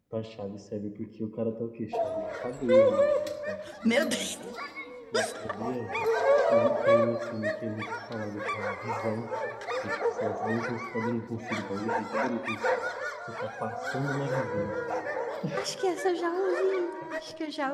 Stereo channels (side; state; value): both; identical; correlation 1.00